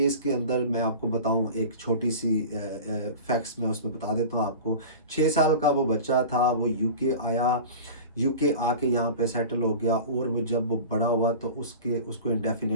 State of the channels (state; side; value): inverted; both; correlation -0.35